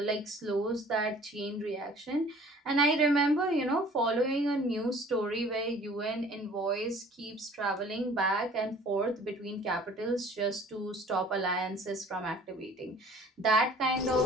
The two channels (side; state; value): both; normal; correlation 0.50